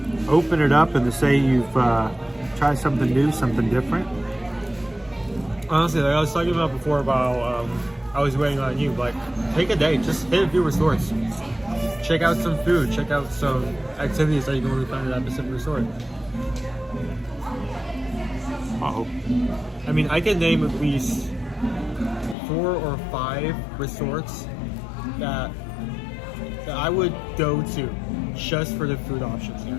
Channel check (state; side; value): drops out; right; at 22.4 s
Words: open it up and to say you've tried something new, something different. Honestly, like I was talking about before about I was waiting on you. Like, take a day, just hit a few resorts. Check out some food, check out some activities that you can only find at that specific resort. Uh-oh. I mean, I can name at least 4 or 5 resorts that I would go to just for the food options